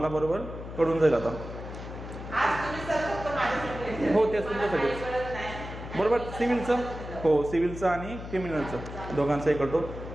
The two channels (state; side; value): noise; left; hum, 10 dB below the sound